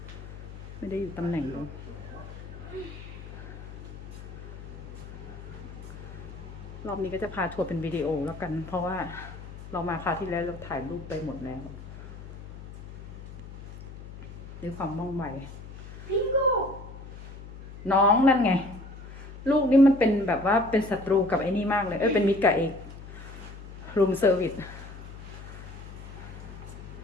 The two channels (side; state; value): left; noise; hum, 13 dB below the sound